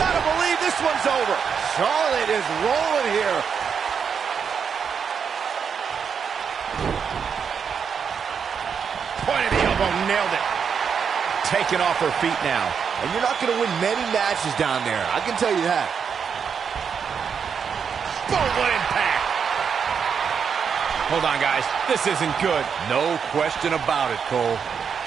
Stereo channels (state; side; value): quieter; left; 6.7 dB